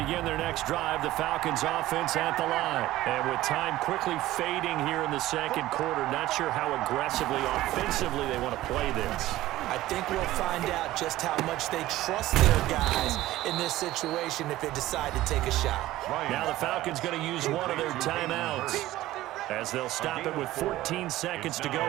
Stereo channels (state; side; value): quieter; left; 15.9 dB